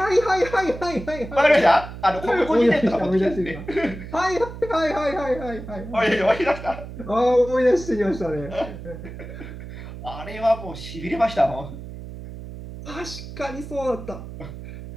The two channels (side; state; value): right; noise; hum, 12 dB below the sound